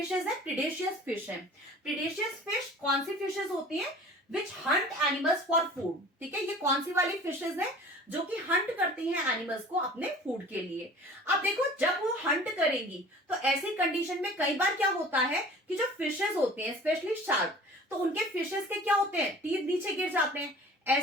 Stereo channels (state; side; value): normal; both; correlation 0.44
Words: है, प्रीडेशियस फिश है। प्रीडेशियस फिश कौन सी फिशेज होती है, witch hunt animals for food. ठीक है, ये कौन सी वाली फिशेज है जो कि हंट करती हैं एनिमल्स को अपने फूड के लिए। अब देखो, जब वो हंट करेंगी तो ऐसी कंडीशन में कई बार क्या होता है कि जो फिशेज होते हैं, स्पेशली शार्क, तो उनके फिशेज के क्या होते हैं, टीथ नीचे गिर जाते हैं।